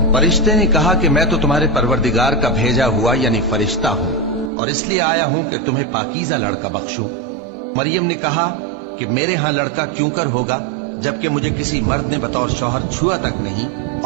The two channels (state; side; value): drops out; left; at 4.5 s